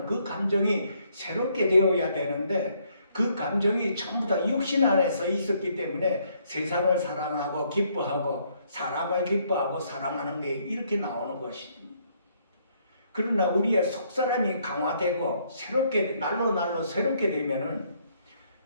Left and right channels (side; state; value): both; inverted; correlation -0.69